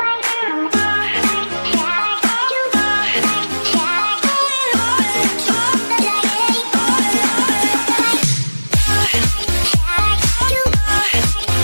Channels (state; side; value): inverted; both; correlation -1.00